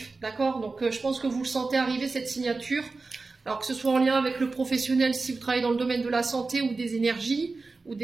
d'accord? Donc je pense que vous le sentez arriver cette signature. Alors que ce soit en lien avec le professionnel, si vous travaillez dans le domaine de la santé ou des énergies, ou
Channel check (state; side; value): quieter; left; 3.8 dB